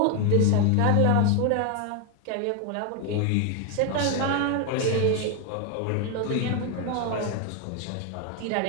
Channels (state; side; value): different; both; correlation 0.01